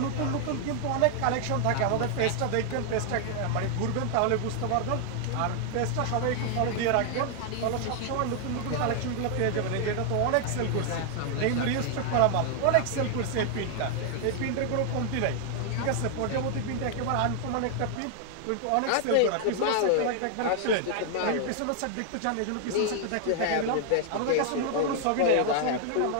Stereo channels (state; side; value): different; both; correlation 0.00